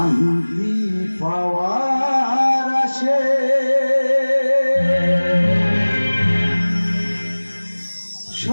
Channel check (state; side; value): inverted; both; correlation -1.00